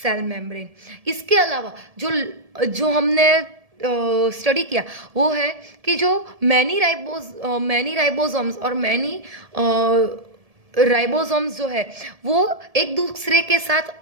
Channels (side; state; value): left; late; 1.7 ms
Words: सेल मेम्ब्रेन. इसके अलावा जो हमने स्टडी किया वो है कि जो मैनी राइबोसोम्स और मैनी राइबोसोम्स जो है वो एक दूसरे के साथ